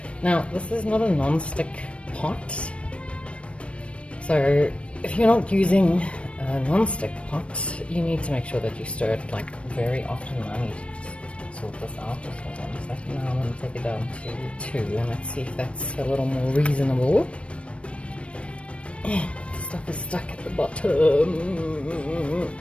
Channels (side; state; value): right; late; 0.061 ms